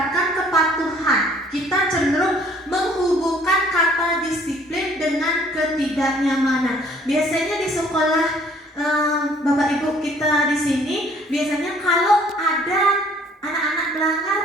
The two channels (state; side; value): normal; both; correlation 0.58